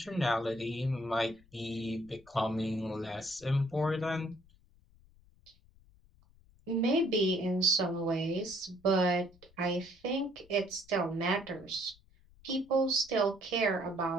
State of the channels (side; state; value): left; noise; rumble, 28 dB below the sound